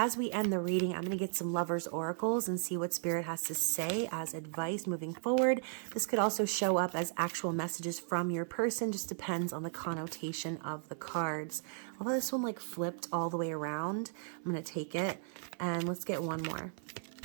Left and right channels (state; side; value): silent; left; 54 dB below the other